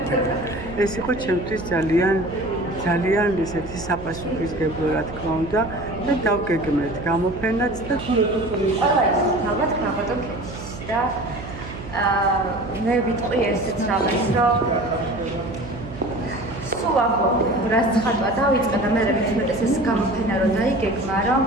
ეს იყო ჩემთვის ძალიან ესეთი საპასუხისმგებლო, რა თქმა უნდა, და დავგეგმეთ გამოფენაც და ალბათ ქაბატონ ქეთის და მე ვიტყვი ესეც რაღაც, რომ სულ აღო რაც ხატვა დავიწყე და მე მეცნიერებს ეს გამოფენა რო დაიგეგმა, რომ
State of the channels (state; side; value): noise; right; hum, 12 dB below the sound